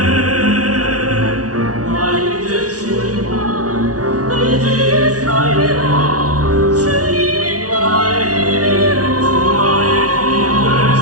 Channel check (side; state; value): left; late; 0.68 ms